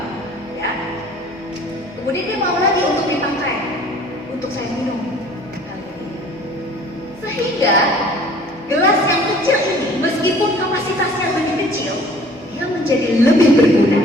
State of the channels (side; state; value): both; normal; correlation 0.51